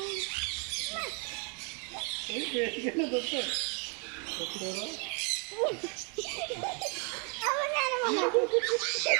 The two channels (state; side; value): quieter; left; 35.9 dB